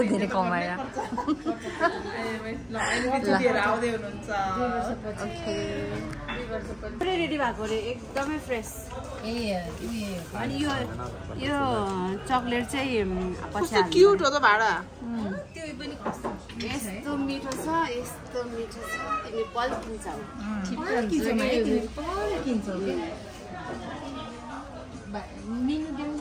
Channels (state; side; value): identical; both; correlation 1.00